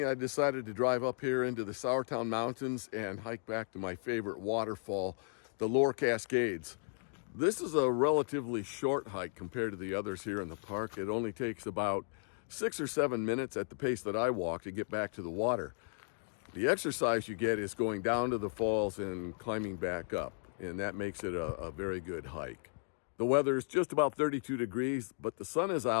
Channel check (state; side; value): silent; right; 54 dB below the other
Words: I decided to drive up here into the Sourtown Mountains and hike back to my favorite waterfall, the Lower Cascades. This is a relatively short hike compared to the others here in the park. It only takes about 6 or 7 minutes at the pace that I walk to get back to the water. The exercise you get is going down to the falls and climbing back up, and that makes it a very good hike. The weather is just about 32 degrees, but the sun is